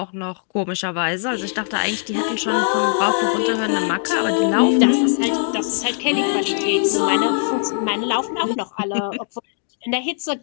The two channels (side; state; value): right; silent; digital silence